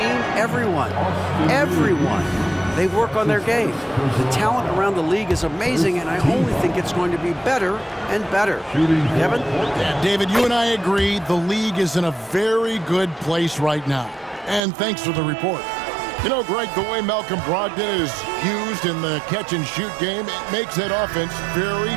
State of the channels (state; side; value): drops out; left; at 14.6 s